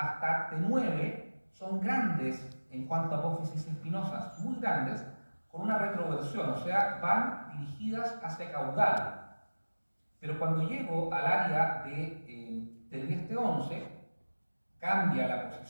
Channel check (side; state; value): both; inverted; correlation -1.00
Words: T9, son grandes en cuanto a apófisis espinosas, muy grandes, con una retroversión, o sea, van dirigidas hacia caudal. Pero cuando llego al área de T10, T11, cambia la